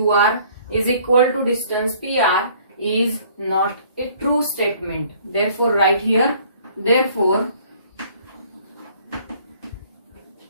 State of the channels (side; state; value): both; inverted; correlation -0.57